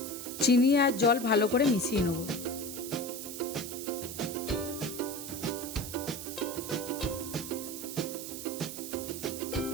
চিনি আর জল ভালো করে মিশিয়ে নেব।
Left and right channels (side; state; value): right; noise; hiss, 8 dB below the sound